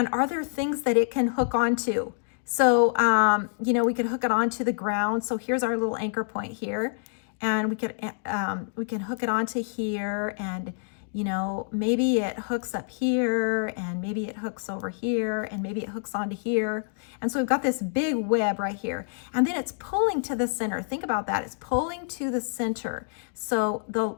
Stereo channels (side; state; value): right; silent; digital silence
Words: are there things that it can hook onto? So, you know, we could hook it onto the ground. So here's our little anchor point here. And we can hook it onto here, and you know, maybe it hooks up here, and maybe it hooks over here, and maybe it hooks onto here. And so we've got this big web right here. And then it's pulling to the center. Think about that. It's pulling to the center. So